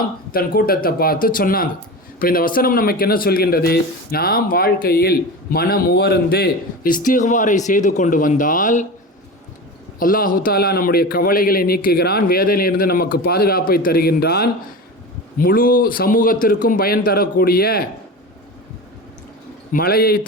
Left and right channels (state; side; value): normal; both; correlation 0.28